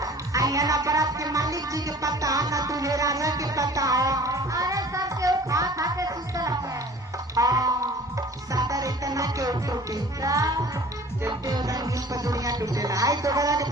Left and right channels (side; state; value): both; normal; correlation 0.47